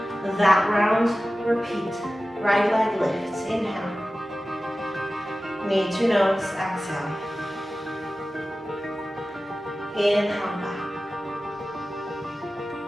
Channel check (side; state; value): both; normal; correlation 0.95